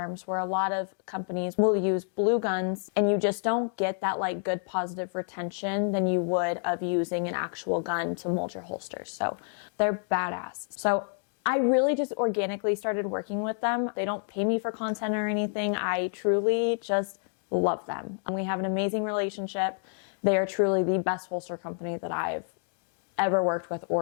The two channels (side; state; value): right; silent; 57 dB below the other